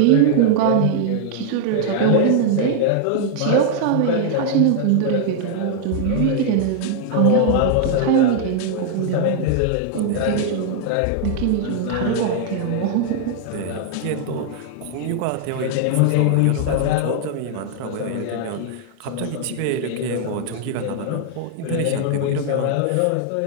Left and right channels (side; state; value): both; different; correlation 0.00